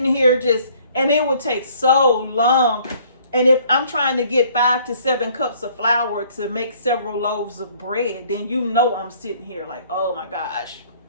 here just, and it would take so long. And if I'm trying to get 5 to 7 cups of flour to make several loaves of bread, then you know I'm sitting here like, oh my gosh,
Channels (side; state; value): both; inverted; correlation -0.59